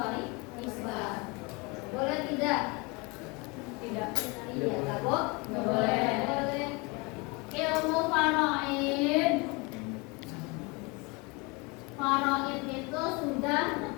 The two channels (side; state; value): right; quieter; 27.8 dB